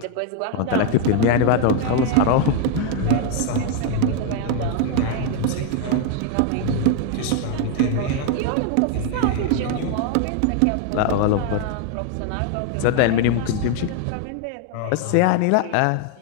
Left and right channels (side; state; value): both; different; correlation 0.01